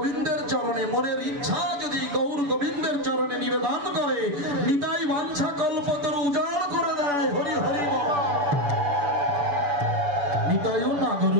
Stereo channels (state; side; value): late; left; 6.9 ms